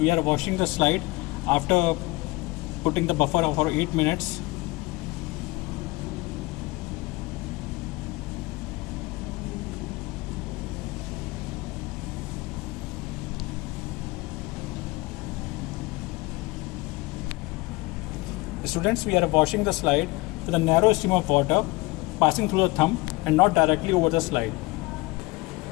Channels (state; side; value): quieter; right; 22.9 dB